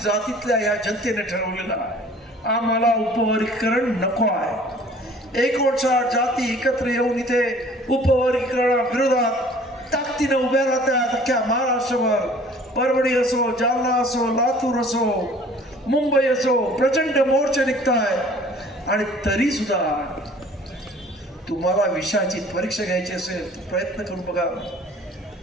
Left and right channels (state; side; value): normal; both; correlation 0.51